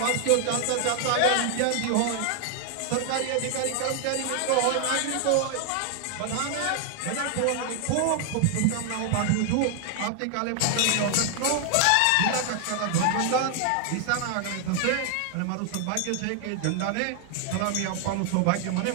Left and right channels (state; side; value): different; both; correlation 0.00